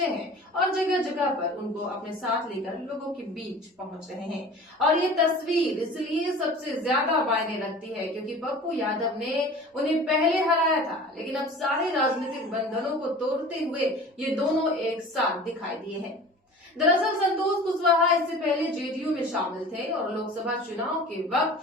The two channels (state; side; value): normal; both; correlation 0.41